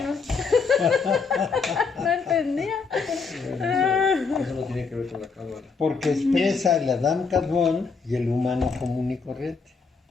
no entendía. Eso no tiene que ver con la cábala. Porque expresa el Adam Kadmon y el humano común y corriente.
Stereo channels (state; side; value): quieter; right; 4.9 dB